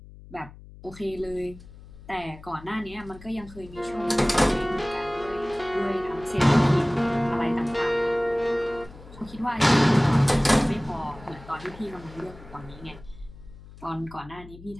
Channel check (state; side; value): noise; left; hum, 19 dB below the sound